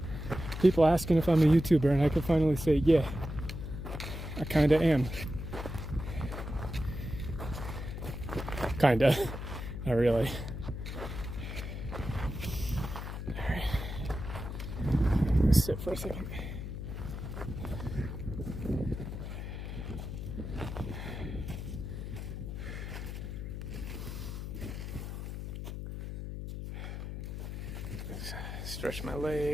People asking if I'm a YouTuber, and I can finally say, yeah, I kinda am. Kinda. Not really. Alright. Let's sit for a second. Stretch my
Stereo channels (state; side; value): noise; left; hum, 6 dB below the sound